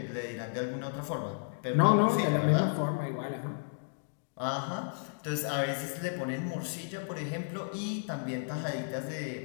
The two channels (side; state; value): right; silent; digital silence